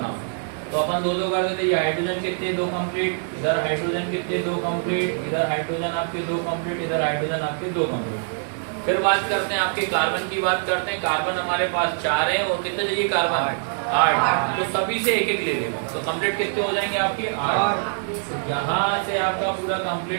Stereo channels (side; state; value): left; silent; digital silence